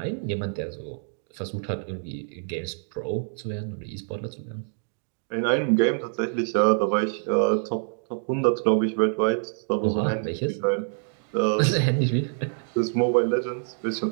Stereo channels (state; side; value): silent; left; digital silence